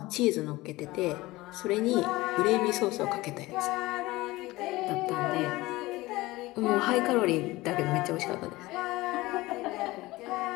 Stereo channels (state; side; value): quieter; right; 19.7 dB